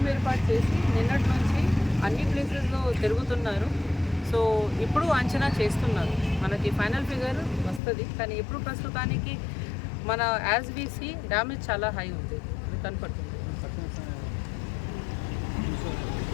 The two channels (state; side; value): drops out; right; at 7.8 s